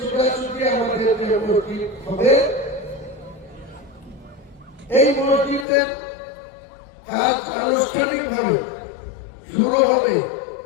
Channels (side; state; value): right; drops out; at 5.7 s